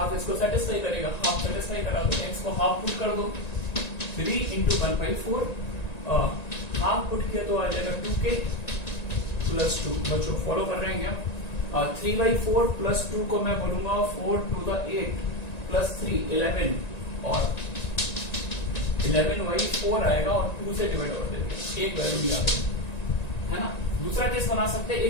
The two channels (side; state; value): right; late; 1.9 ms